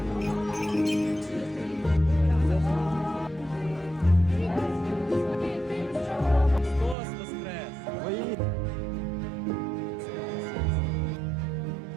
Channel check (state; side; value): drops out; left; at 7.0 s